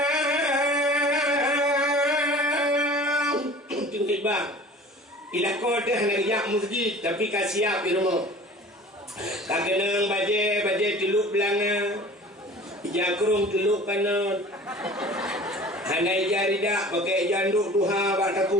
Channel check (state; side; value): normal; both; correlation 0.43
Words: Bang, ilako teh nak masjid tapi kasiap di rumah. Kagenang baje teluk belanga, jakrung teluk kanan. Hanai jari dak pakai janduk duha bak